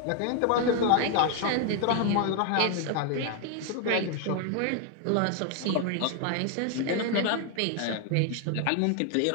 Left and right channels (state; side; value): different; both; correlation 0.00